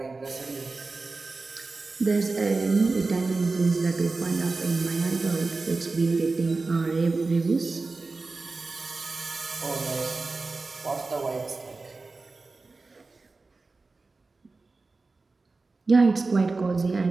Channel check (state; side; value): quieter; left; 3.7 dB